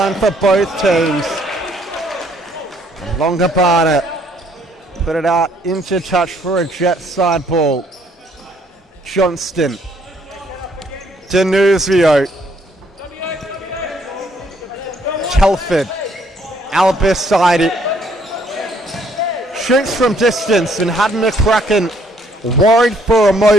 for both teams. Longobarda put it out into touch for a Jet side ball. Johnston. Denuzio. Telford. Albiside. Shoots from distance and had McCracken worried for a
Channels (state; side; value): normal; both; correlation 0.66